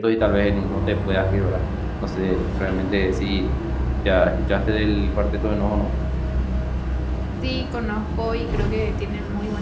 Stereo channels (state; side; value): identical; both; correlation 1.00